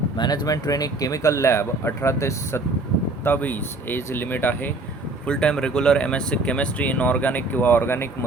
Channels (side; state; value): left; quieter; 3.1 dB